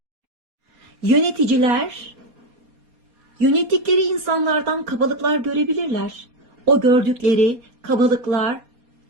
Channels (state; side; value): late; left; 4.2 ms